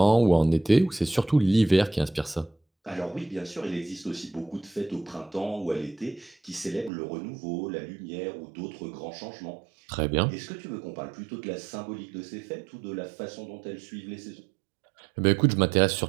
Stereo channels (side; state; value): left; drops out; at 6.9 s